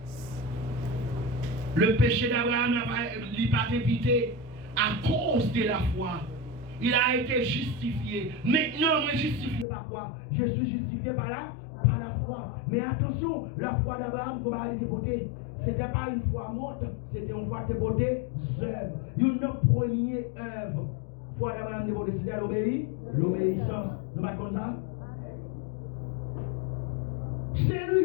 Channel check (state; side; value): drops out; right; at 9.7 s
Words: Le péché d'Abraham n'a pas été évité à cause de la foi. Il a été justifié. Maintenant, moi justifié par quoi? Je suis justifié par la foi. Mais attention, la foi d'Abraham, comment elle était votée? Ce n'était pas une foi morte, c'était une foi dévotée œuvre. Une première œuvre. Foi d'Abraham dévotée, c'était l'obéissance. Nous pas comme ça? C'est